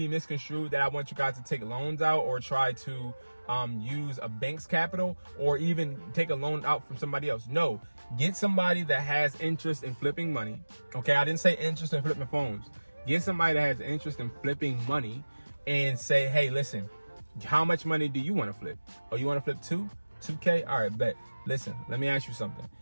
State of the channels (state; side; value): inverted; both; correlation -1.00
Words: misconstrued that I want you guys to take loans out or try to use a bank's capital or even take a loan out from somebody else. No, get somebody that has interest in flipping money. Okay, I didn't say interest in flipping phones. Get somebody that has interest in flipping money and say, hey, listen, how much money do you want to flip? Oh, you want to flip 2K? All right, bet. Listen, let me ask you something.